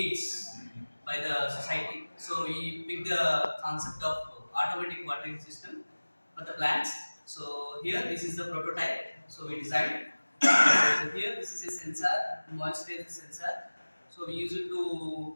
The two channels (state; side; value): inverted; both; correlation -1.00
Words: by the society. So we picked the concept of automatic watering system for the plants. So here this is the prototype. So we designed So here this is a sensor, moisture is a sensor. So we use it to